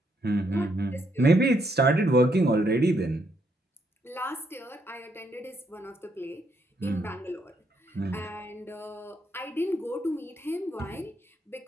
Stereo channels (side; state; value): both; normal; correlation 0.75